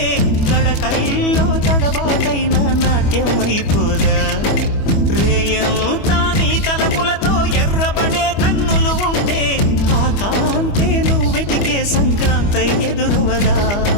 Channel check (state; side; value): late; right; 25 ms